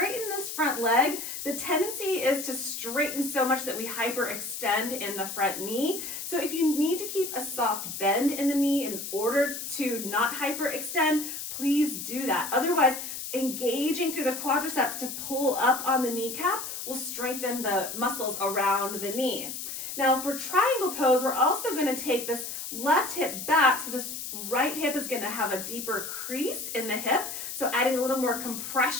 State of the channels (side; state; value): left; noise; hiss, 7 dB below the sound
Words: this front leg, the tendency is to straighten so much that we hyperextend in the front knee. So if you need to keep a soft bend in the knee in order to not hyperextend, please do that. Otherwise, engaging through the quadriceps to pull up on the kneecap will strengthen the muscles around the knee. Now for triangle pose, we're also going to take this left hip back, so this right hip is going to have a deeper crease in the hip, so adding a little more